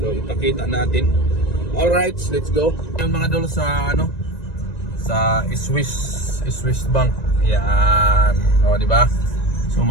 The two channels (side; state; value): right; late; 1.9 ms